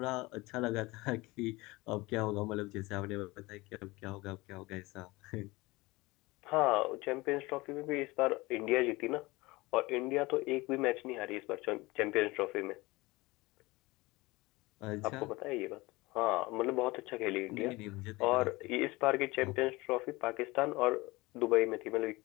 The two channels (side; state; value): right; quieter; 22.0 dB